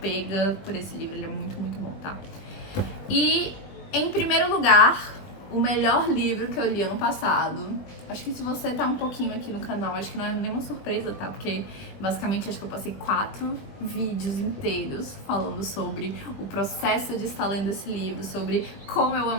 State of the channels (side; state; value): right; late; 20 ms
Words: por esse livro. Ele é muito, muito bom, tá? E, em primeiro lugar, o melhor livro que eu li ano passado. Acho que se você tá um pouquinho aqui no canal, acho que não é nenhuma surpresa, tá? Porque, basicamente, acho que eu passei 4 vídeos inteiros falando sobre o processo de estar lendo esse livro, sobre como eu